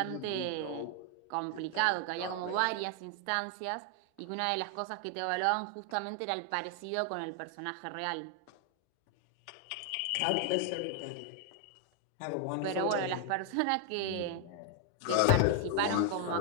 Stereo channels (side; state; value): both; different; correlation 0.00